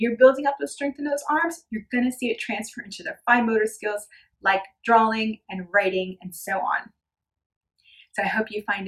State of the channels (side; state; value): both; identical; correlation 1.00